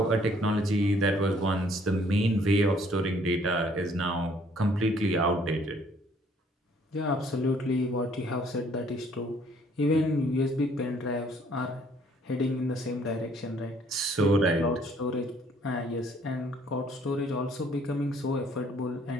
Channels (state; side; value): normal; both; correlation 0.61